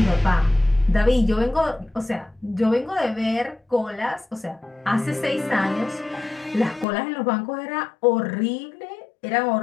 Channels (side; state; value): right; drops out; at 6.9 s